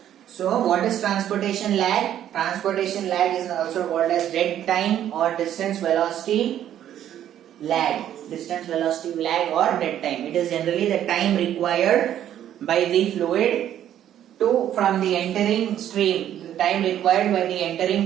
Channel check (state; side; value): quieter; left; 11.0 dB